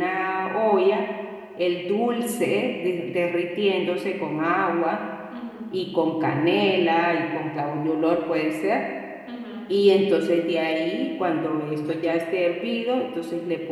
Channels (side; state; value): both; identical; correlation 1.00